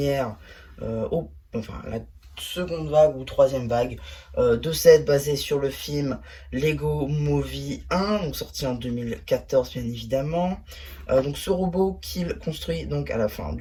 enfin la seconde vague ou troisième vague de set basé sur le film Lego Movie 1, donc sorti en 2014 bien évidemment. Donc ce robot qu'il construit donc à la fin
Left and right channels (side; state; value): both; identical; correlation 1.00